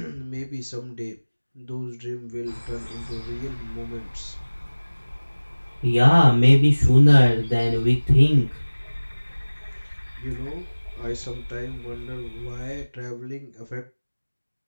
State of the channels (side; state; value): both; inverted; correlation -1.00